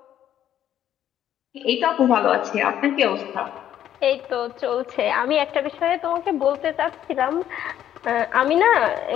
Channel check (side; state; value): right; quieter; 10.9 dB